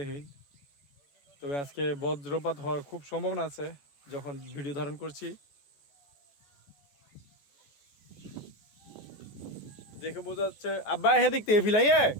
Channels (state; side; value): late; right; 14 ms